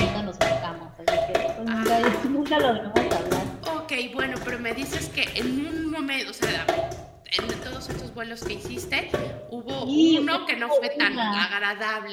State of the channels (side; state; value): both; identical; correlation 1.00